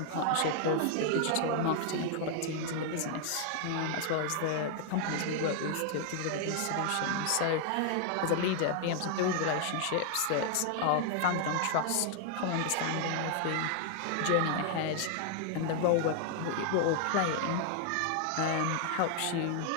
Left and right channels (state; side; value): different; both; correlation 0.00